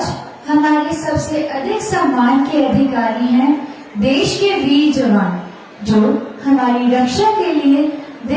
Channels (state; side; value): identical; both; correlation 1.00